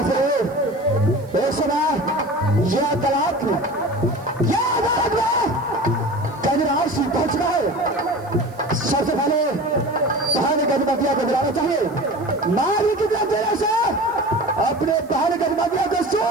से एक समय यह तलाक में यह अदालत में गजराज सिंह पहुंचना है। सबसे पहले पहाड़ गजमतिया को बुलाना चाहिए। मारी की तेरे से अपने पहाड़ गजमतिया को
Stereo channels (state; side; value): noise; right; hiss, 28 dB below the sound